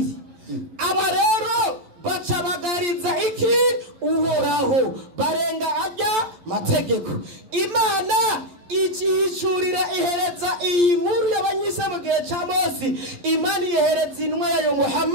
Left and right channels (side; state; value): left; late; 11 ms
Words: aba rero bacabagariza iki uhoraho barenga ajya mategeko. Imana ikihishurira ihereza iyi nkuru y'abanyisa mu gihe cya Mose. Imana ihereza intumwa yayo